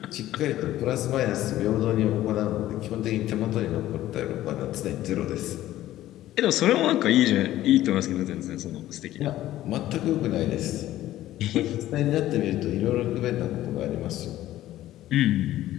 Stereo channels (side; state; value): right; quieter; 14.2 dB